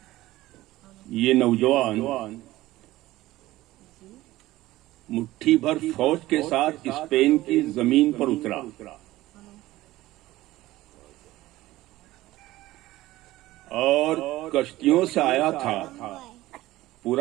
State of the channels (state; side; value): quieter; left; 17.0 dB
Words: یہ نوجوان مٹھی بھر فوج کے ساتھ اسپین کی زمین پر اترا. اور کشتیوں سے آیا تھا